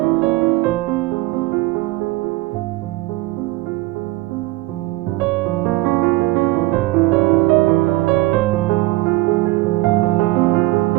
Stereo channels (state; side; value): quieter; left; 19.6 dB